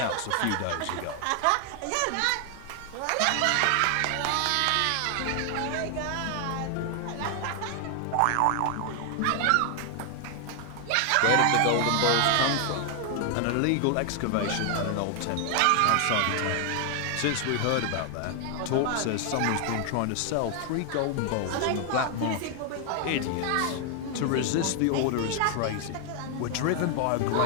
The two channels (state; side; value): different; both; correlation 0.00